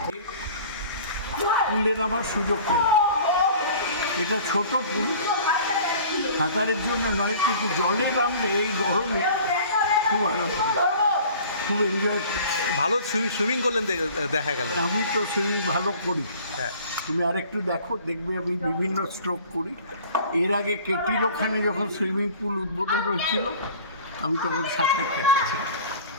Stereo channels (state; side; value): inverted; both; correlation -0.46